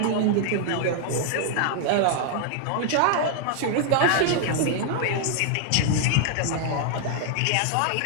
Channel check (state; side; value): different; both; correlation 0.00